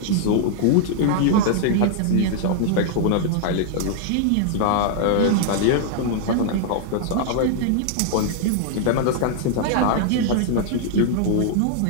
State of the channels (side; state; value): both; different; correlation -0.01